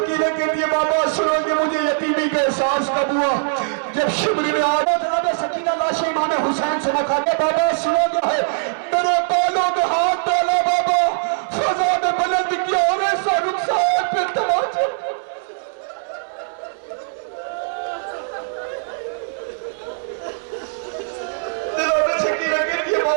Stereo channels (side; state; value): left; silent; 65 dB below the other